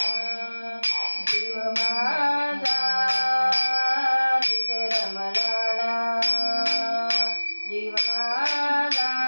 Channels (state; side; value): inverted; both; correlation -1.00